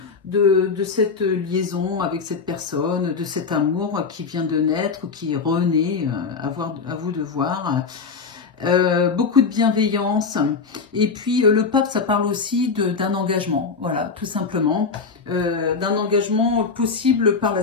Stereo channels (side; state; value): right; quieter; 5.0 dB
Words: de cette liaison avec cette personne, de cet amour qui vient de naître, qui renaît, à vous de voir. Beaucoup de bienveillance. Et puis le pape, ça parle aussi d'un engagement, voilà, tout simplement, d'un engagement possible par la